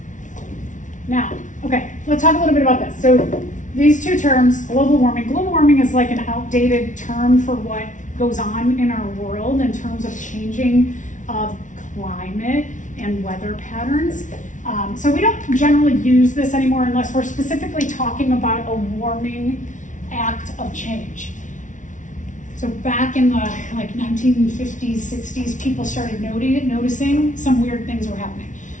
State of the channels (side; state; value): right; late; 0.37 ms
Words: Now, okay, let's talk a little bit about this. So these two terms, global warming. Global warming is like an outdated term for what goes on in our world in terms of changing of climate and weather patterns. So we don't generally use this anymore unless we're specifically talking about a warming act of change. So back in the 1950s, 60s, people started noticing some weird things were happening.